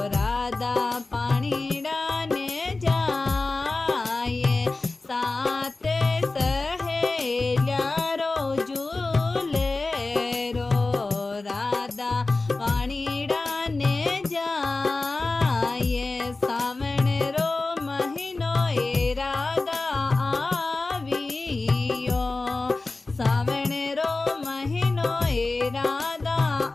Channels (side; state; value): right; quieter; 3.4 dB